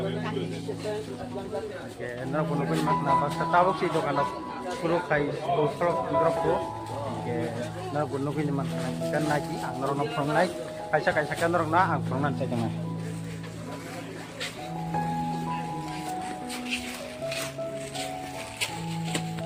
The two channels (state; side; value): identical; both; correlation 1.00